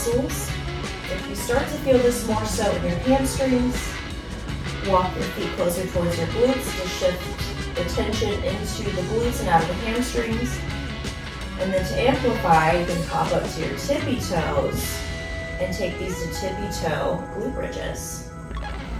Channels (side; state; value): both; identical; correlation 1.00